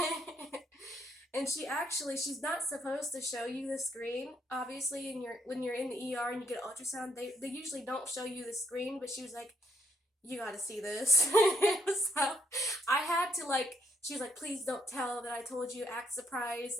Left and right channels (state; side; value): normal; both; correlation 0.75